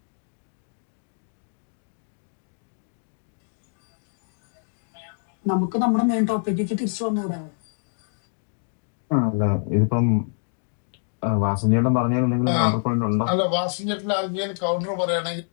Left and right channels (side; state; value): right; silent; digital silence